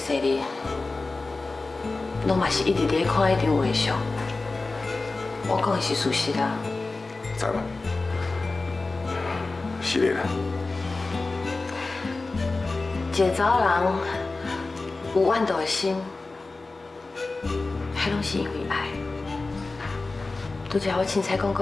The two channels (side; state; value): right; quieter; 3.5 dB